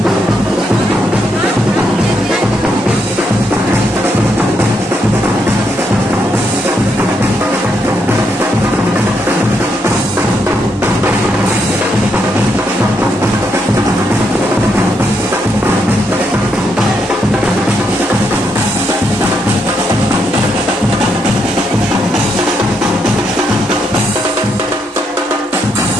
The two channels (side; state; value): both; normal; correlation 0.78